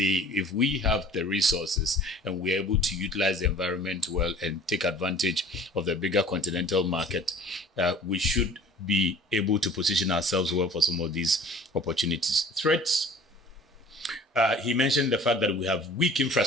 we have the resources and we're able to utilize the environment well and take advantage of the bigger continental market, we should be able to position ourselves well for some of these opportunities. Threats, he mentioned the fact that we have weak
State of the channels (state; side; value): normal; both; correlation 0.47